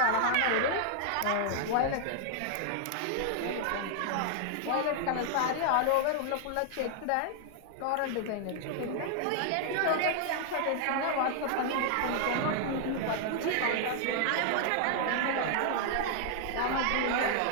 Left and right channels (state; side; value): different; both; correlation 0.00